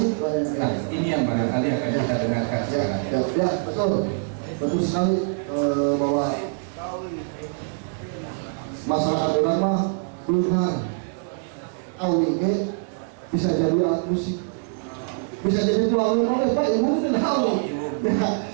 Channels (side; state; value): left; silent; 62 dB below the other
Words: Nah, ini yang barangkali akan kita dengarkan sekarang. Ya, betul sekali bahwa masyarakat orang mah benar awige bisa jadi alat musik, bisa jadi tuang oleh Pak Ibu dan Hawi. Ya,